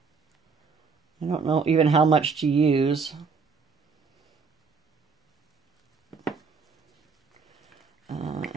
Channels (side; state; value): left; quieter; 5.1 dB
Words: don't know even how much to use.